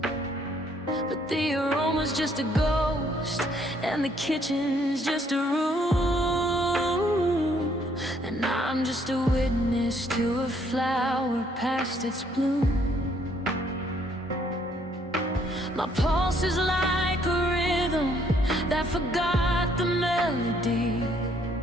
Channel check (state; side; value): normal; both; correlation 0.67